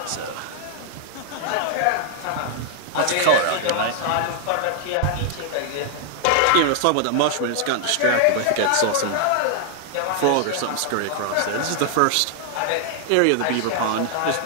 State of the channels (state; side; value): different; both; correlation 0.00